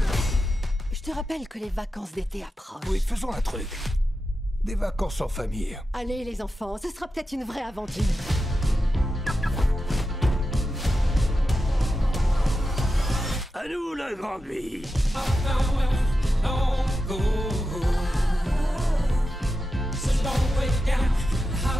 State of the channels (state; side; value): normal; both; correlation 0.90